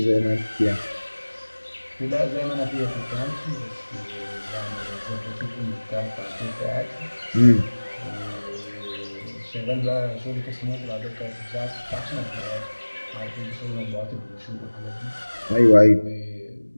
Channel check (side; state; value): both; inverted; correlation -1.00